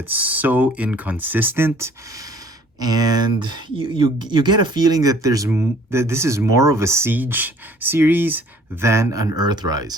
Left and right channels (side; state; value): both; normal; correlation 0.55